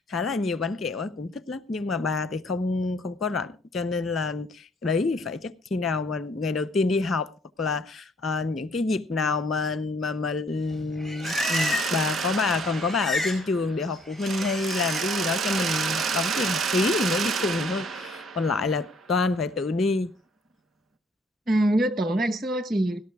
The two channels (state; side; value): normal; both; correlation 0.63